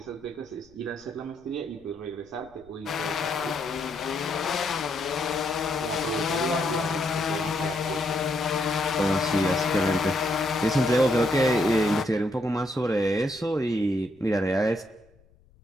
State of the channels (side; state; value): left; noise; rumble, 30 dB below the sound